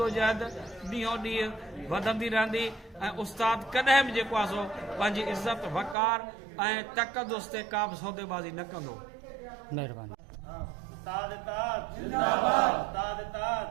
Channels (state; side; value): drops out; left; at 6.0 s